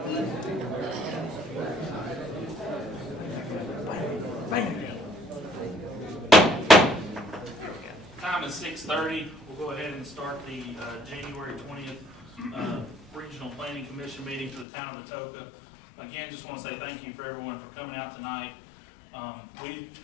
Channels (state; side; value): drops out; right; at 14.7 s